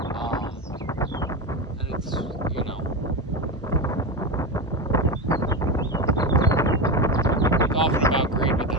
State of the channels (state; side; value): normal; both; correlation 0.18